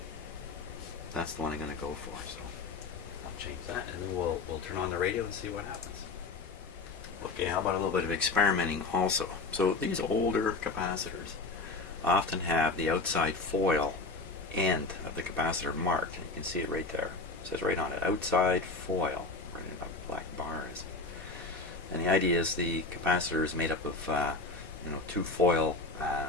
that's the one I'm going to go for. So I'll change that, and then we'll turn on the radio and see what happens. Okay, how about a little bit of experimenting also? So these older capacitors often have the outside foil end of the capacitor marked. You can see it right there. It says right on it, outside foil, right in a black bar is. And the idea is the capacitor is made up of 2 foil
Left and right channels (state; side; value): quieter; right; 3.6 dB